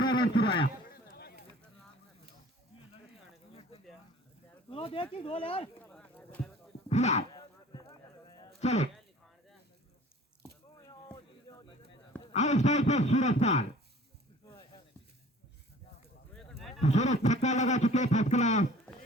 रन चुराया। फिलहाल चलो आउटसाइड पर सूरज छक्का लगा चुके फर्स्ट क्लास।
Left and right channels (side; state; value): both; normal; correlation 0.48